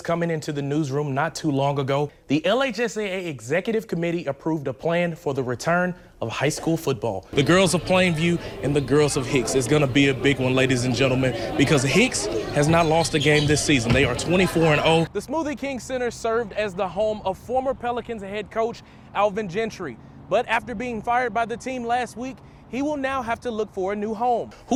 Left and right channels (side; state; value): both; identical; correlation 1.00